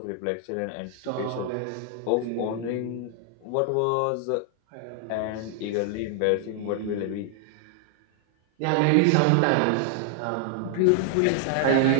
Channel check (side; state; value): both; different; correlation 0.00